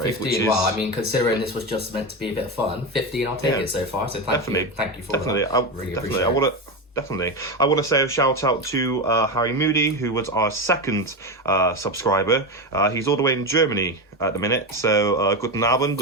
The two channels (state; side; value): normal; both; correlation 0.17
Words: 15, which is... well, I mean, considering this was just meant to be a bit of fun, 15, I'll take it so far, so thank you for that. Really appreciate it. Definitely. I want to say a shout out to Harry Moody, who was our second subscriber. He's all the way in Germany at the minute. So, guten Abend,